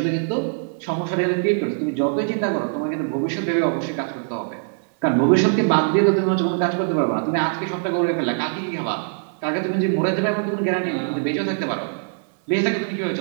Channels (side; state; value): left; silent; digital silence